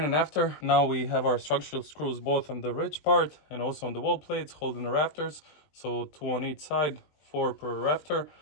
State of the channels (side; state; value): right; late; 20 ms